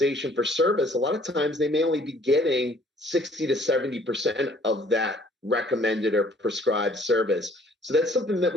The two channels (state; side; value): normal; both; correlation 0.59